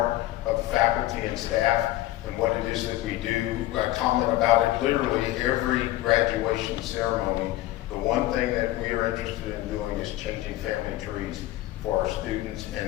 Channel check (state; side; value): quieter; right; 15.8 dB